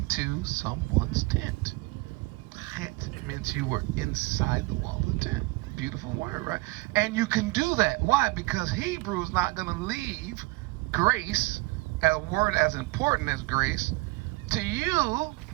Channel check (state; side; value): quieter; left; 23.5 dB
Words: someone's tent. That meant you were inside the wall of the tent. Beautiful word, right? And you can do that. Why? Because Hebrew is not going to leave grace, a word as important as grace, to you